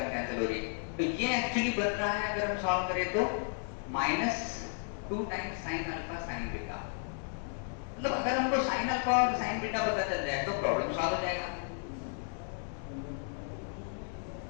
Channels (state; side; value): silent; right; 55 dB below the other